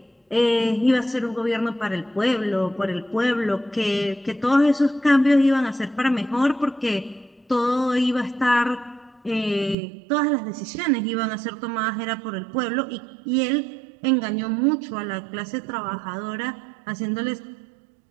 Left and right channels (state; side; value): drops out; left; at 9.8 s